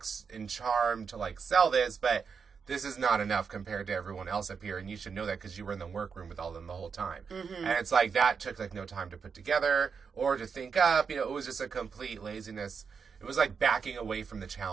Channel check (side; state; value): left; quieter; 5.9 dB